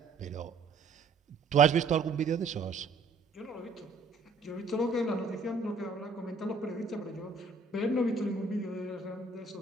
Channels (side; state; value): left; quieter; 4.0 dB